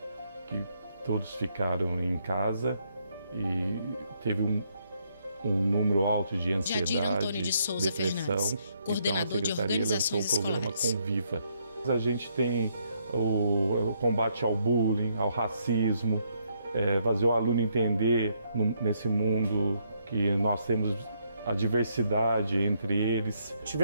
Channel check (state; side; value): inverted; both; correlation -0.74